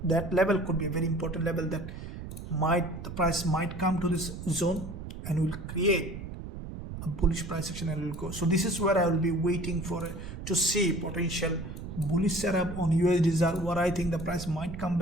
level could be a very important level that the price might come to this zone and will create a bullish price action and will go. So this is where I will be waiting for to see potential bullish setup on USD ZAR. What I think the price might come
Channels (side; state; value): right; noise; rumble, 9 dB below the sound